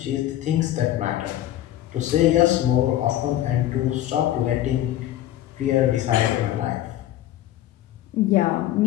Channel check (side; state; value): right; quieter; 13.3 dB